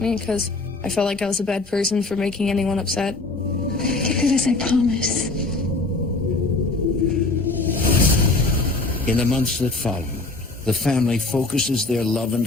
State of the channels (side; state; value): right; quieter; 3.3 dB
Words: me because I felt like I was a bad person for making anyone upset. Get through this, I promise. In the months that follow, the family focuses their love and